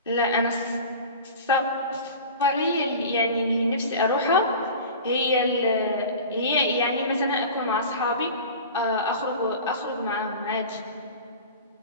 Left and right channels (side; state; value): both; inverted; correlation -0.35